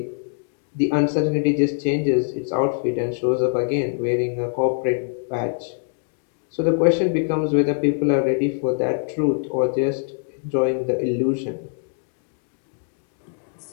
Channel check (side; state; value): right; silent; digital silence